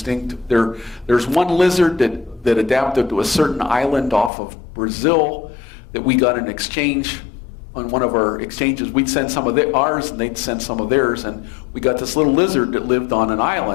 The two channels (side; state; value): right; drops out; at 4.3 s